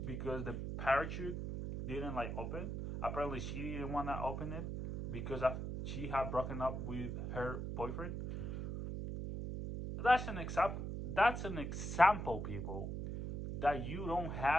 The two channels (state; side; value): noise; right; hum, 4 dB below the sound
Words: because the parachute didn't like open. Apparently, she didn't want to open it because she had broken up with her boyfriend. That's an example. That's an example, people, that you don't